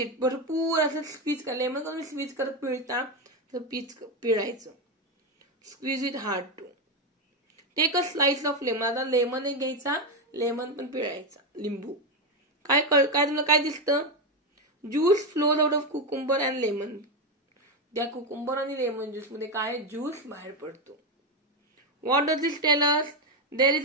भरपूर असं स्क्वीज करा. लेमन करून स्क्वीज करत पिळता तर पीच पिळायचं. Squeeze it hard too. Take a slice of lemon. आता लेमन एक घ्यायचा, लेमन पण पिळायचा, लिंबू. काय तुला काय दिसतं? Juice flows out of cucumber and lemon. त्या कुकुंबर आणि लेमन ज्यूस मध्ये काय ज्यूस बाहेर पडतो. What does this tell us? There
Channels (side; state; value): both; normal; correlation 0.09